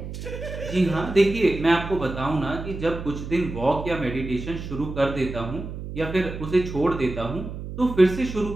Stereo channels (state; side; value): noise; right; hum, 8 dB below the sound